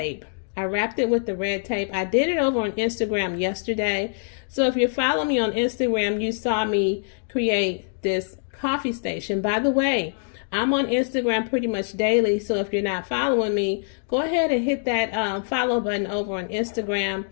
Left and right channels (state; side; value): silent; right; digital silence